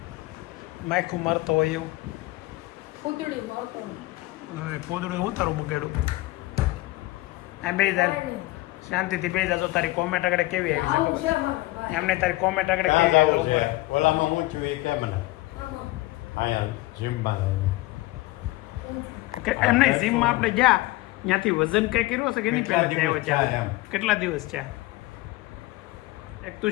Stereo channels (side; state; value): right; quieter; 19.7 dB